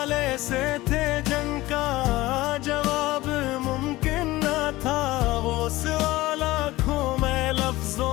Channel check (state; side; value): quieter; right; 18.5 dB